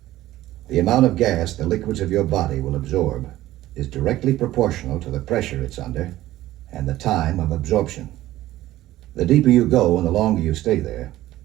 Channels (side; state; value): left; quieter; 15.2 dB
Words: The amount of gas the liquids of your body will absorb is directly proportional to the pressure it's under and the time of absorption. The deeper you go and the longer you stay there,